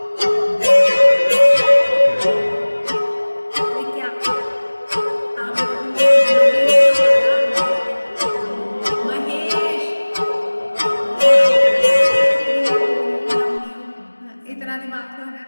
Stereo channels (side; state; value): both; inverted; correlation -1.00